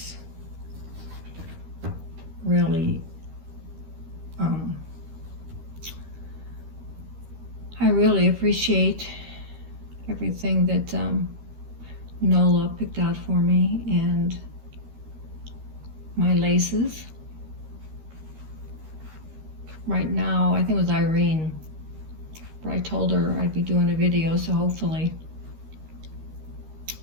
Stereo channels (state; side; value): late; left; 13 ms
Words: really, I really appreciate everything that Nola picked out for me, and my laces. Right now, I think it was Irene, but I told her I'd be doing a video, so hopefully